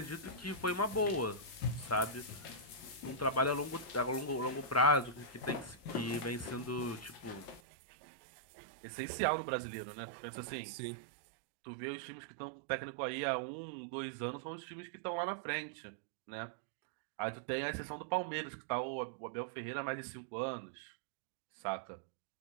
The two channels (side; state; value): left; drops out; at 7.6 s